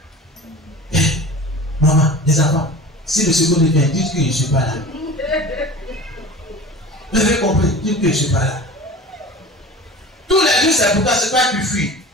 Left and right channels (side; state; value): both; normal; correlation 0.37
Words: Maman, les enfants, si le seconde vient, dites que je ne suis pas là. Vous avez compris, dites que je ne suis pas là. Tous les jours, c'est pourquoi c'est pas que tu fuis.